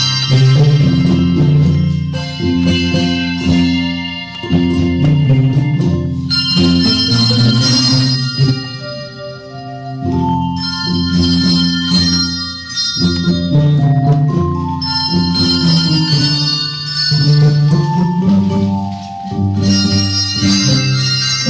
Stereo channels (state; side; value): identical; both; correlation 1.00